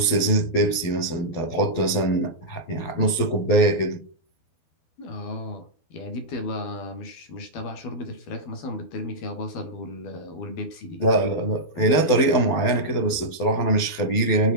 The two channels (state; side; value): late; right; 12 ms